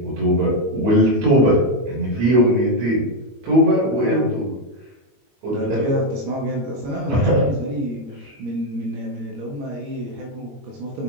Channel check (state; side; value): late; left; 21 ms